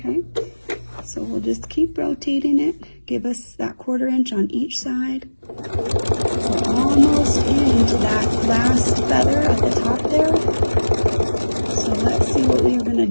so we'll just keep rotating it. Give us that 1/4 inch on each side. We're almost into that last feather at the top there. So let's see what we're going to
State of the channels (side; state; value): both; inverted; correlation -1.00